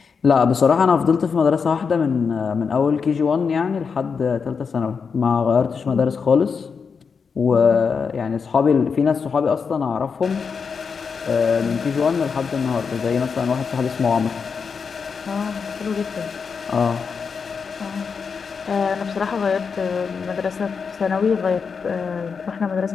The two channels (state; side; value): quieter; right; 5.7 dB